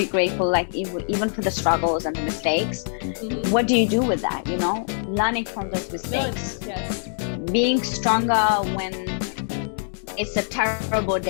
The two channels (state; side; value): silent; right; digital silence